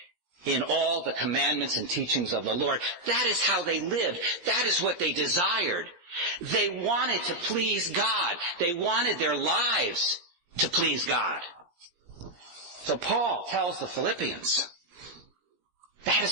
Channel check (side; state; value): left; late; 17 ms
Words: in all the commandments and teachings of the Lord. That is how they lived. That is what they desired. They wanted to please God. They wanted their lives to please God. So Paul tells the Philippians, that